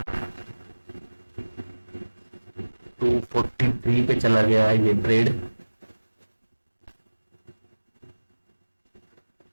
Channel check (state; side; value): inverted; both; correlation -1.00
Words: टू 43 पे चला गया है ये ट्रेड।